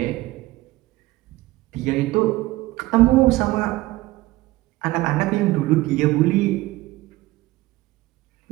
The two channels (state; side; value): quieter; left; 18.5 dB